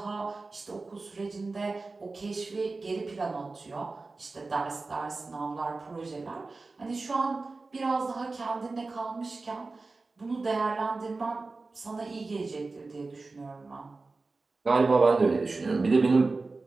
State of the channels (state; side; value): quieter; left; 3.7 dB